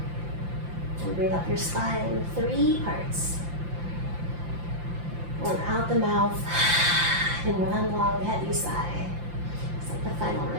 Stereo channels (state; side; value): late; left; 5.8 ms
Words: And breathe up your spine, 3 parts. And out the mouth in one long heavy sigh. It's like the final